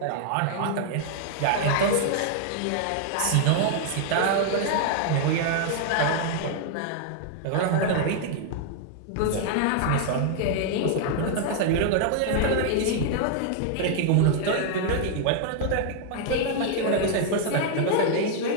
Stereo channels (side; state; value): both; different; correlation 0.00